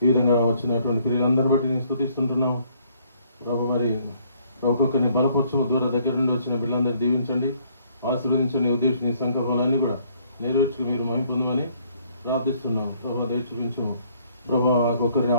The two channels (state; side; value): inverted; both; correlation -0.64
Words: ఈ విధంగా వచ్చినటువంటి క్రియలందరిని బట్టి నేను స్తుతిస్తుంటున్నాం. ప్రభు మరి ఒక్కొక్కరిని బలపరచము దూర దగ్గర నుండి వచ్చిన బిడ్డలందరినీ దీవించండి, ఆశీర్వదించండి. ఉద్దేశం నీ సంకల్పాలన్నీ కూడా నెరవేర్చుకు మీరు మహిమ పొందమని ప్రార్థిస్తున్నాం. ప్రభు దయ చూపించము. ప్రభు ఒక్కరిని